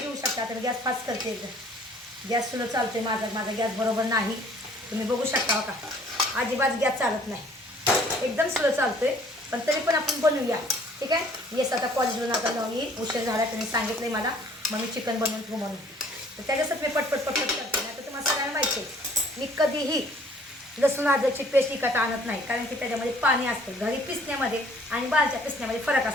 घेऊ शकता. तर गॅस फास्ट करते एकदम. गॅस स्लो चालते माझा गॅस बरोबर नाही. तुम्ही बघू शकता का अजिबात गॅस चालत नाही, एकदम स्लो चालतोय. पण तरी पण आपण बनवूया. ठीक आहे. येस आता कॉलेजवरून आता जाऊन येईल, उशीर झाला. तुम्ही सांगितलं मला मग मी चिकन बनवून ठेवू म्हणून. तर त्याच्यासाठी मी पटपट करते. नाही तर तुम्हाला सगळ्यांना माहिती आहे मी कधीही लसूण अद्रकची पेस्ट विकत आणत नाही, कारण की त्याच्यामध्ये पाणी असतं. घरी पिसण्यामध्ये आणि बाहेरच्या पिसण्यामध्ये फरक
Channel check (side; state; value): both; normal; correlation 0.57